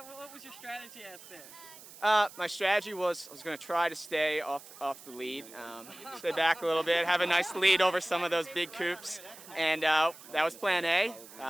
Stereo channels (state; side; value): noise; right; hiss, 18 dB below the sound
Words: was your strategy out there? My strategy was I was going to try to stay off the lead, stay back a little bit, have a nice lead over some of those big coops, and that was plan A.